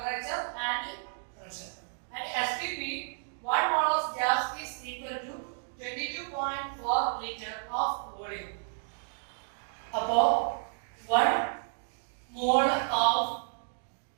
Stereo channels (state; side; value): silent; left; digital silence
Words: and pressure. And STP, 1 mole of gas is equal to 22.4 liter of volume. About 1 mole of